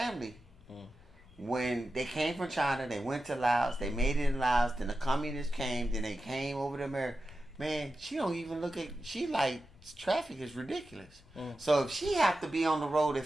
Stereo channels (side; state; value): left; noise; rumble, 25 dB below the sound